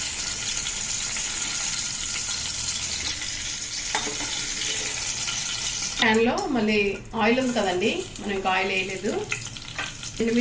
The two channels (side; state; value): both; identical; correlation 1.00